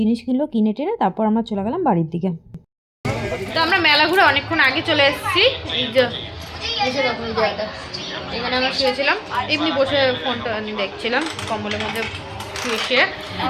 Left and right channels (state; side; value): identical; both; correlation 1.00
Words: কিনলো, কিনে টেনে তারপর আমরা চলে গেলাম বাড়ির দিকে। তো আমরা মেলা ঘুরে অনেকক্ষণ আগে চলে এসেছি। এই যে এসে দেখো এই জায়গাটা, এখানে আমরা শুয়েছিলাম, এমনি বসে ফোনটা দেখছিলাম কম্বলের মধ্যে শুয়ে।